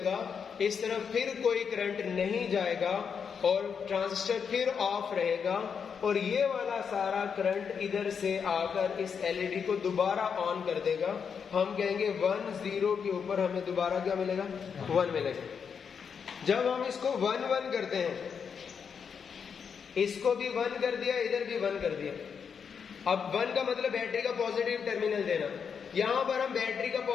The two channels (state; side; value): quieter; right; 6.6 dB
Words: इस तरफ फिर कोई करंट नहीं जाएगा और ट्रांजिस्टर फिर ऑफ रहेगा और ये वाला सारा करंट इधर से आकर इस LED को दोबारा ऑन कर देगा। हम कहेंगे 1 0 के ऊपर हमें दोबारा क्या मिलेगा, 1 मिलेगा। जब हम इसको 1 1 करते हैं, इसको भी 1 कर दिया, इधर भी 1 कर दिया। अब 1 का मतलब बैटरी का पॉजिटिव टर्मिनल देना। यहां पर हम बैटरी का